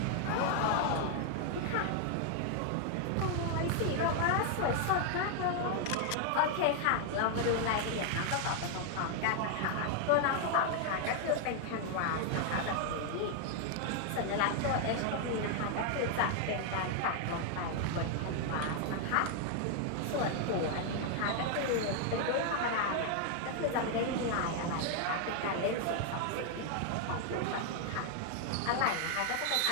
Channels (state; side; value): different; both; correlation 0.00